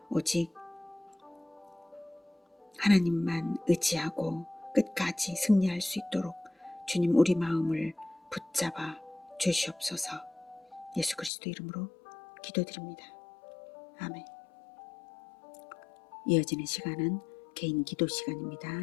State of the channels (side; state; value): right; drops out; at 11.3 s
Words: 오직 하나님만 의지하고 끝까지 승리할 수 있도록 주님 우리 마음을 붙잡아 주시옵소서. 예수 그리스도 이름으로 기도드립니다. 아멘. 이어지는 시간은 개인 기도 시간입니다.